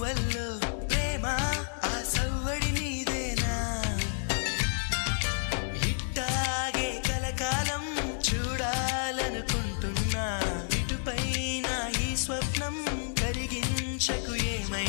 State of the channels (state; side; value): silent; right; digital silence